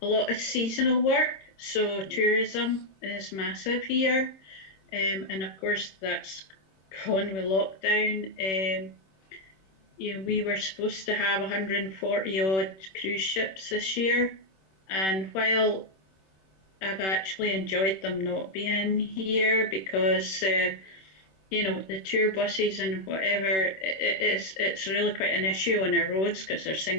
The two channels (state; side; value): late; right; 26 ms